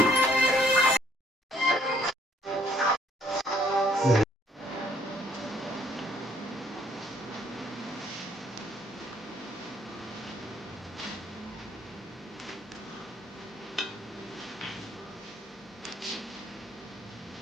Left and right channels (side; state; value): both; normal; correlation 0.64